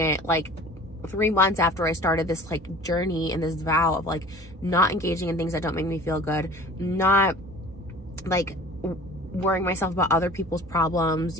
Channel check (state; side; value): normal; both; correlation 0.44